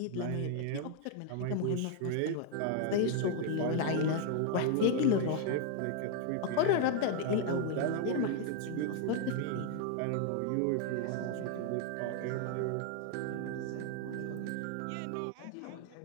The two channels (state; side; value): different; both; correlation 0.00